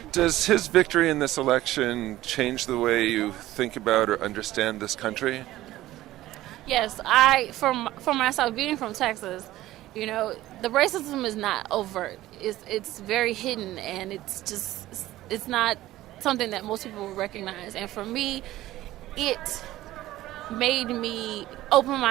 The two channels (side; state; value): left; quieter; 15.6 dB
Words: Does his victory in this election change the way you think about or understand this country? Yes, for myself, being from Texas, the racism is not overt. It's very hidden, and it's not something that most people would recognize. And for me, it made me open